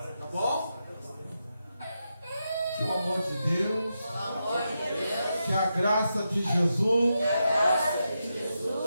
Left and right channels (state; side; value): inverted; both; correlation -0.86